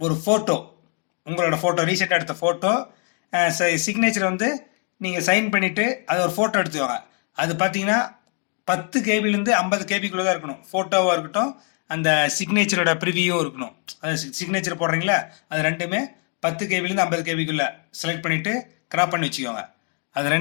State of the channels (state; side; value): quieter; right; 37.2 dB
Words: ஒரு ஃபோட்டோ, உங்களோட ஃபோட்டோ ரீசெண்டாக எடுத்த ஃபோட்டோ, சிக்னேச்சர் வந்து நீங்கள் சைன் பண்ணிவிட்டு அதை ஒரு ஃபோட்டோ எடுத்துவாங்க. அது பார்த்தீங்கன்னா 10 கேபிலேருந்து 50 கேபிக்குள்ளே தான் இருக்கணும். ஃபோட்டோவாக இருக்கட்டும், அந்த சிக்னேச்சரோட ப்ரிவியூவும் இருக்கணும். அது சிக்னேச்சர் போடுறீங்களா, அது ரெண்டுமே 10 கேபிலேருந்து 50 கேபிக்குள்ளே செலக்ட் பண்ணிவிட்டு கிராப் பண்ணி வச்சுக்கோங்க. அது